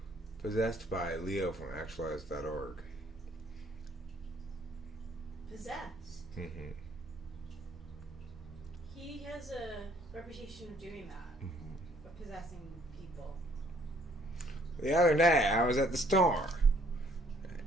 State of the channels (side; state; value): both; normal; correlation 0.63